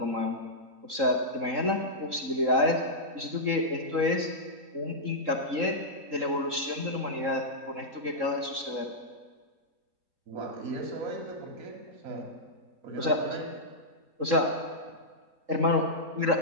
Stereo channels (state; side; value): late; left; 3.7 ms